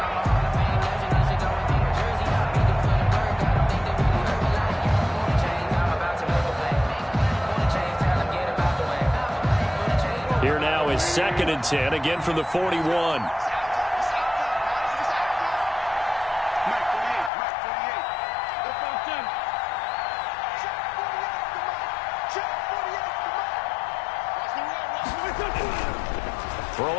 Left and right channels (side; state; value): right; drops out; at 17.3 s